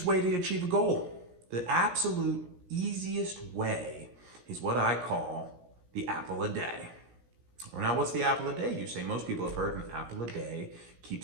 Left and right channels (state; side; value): late; left; 17 ms